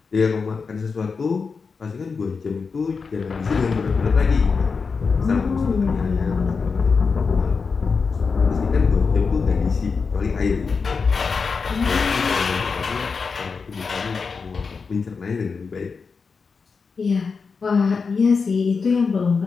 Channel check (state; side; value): quieter; right; 5.0 dB